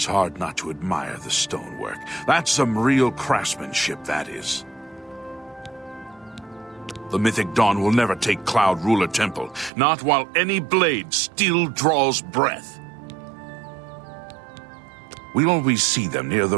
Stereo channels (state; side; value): drops out; left; at 9.7 s